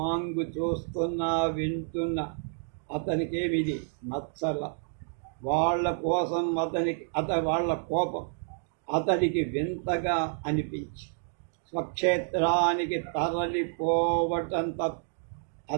చూస్తున్నా వింటున్న అతనికేమిది నచ్చల. వాళ్ళ కోసం వాళ్ళ కోపం అతడికి వింతగా అనిపించి స్వక్షేత్రానికి తరలిపోవటం తప్ప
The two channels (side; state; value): left; silent; digital silence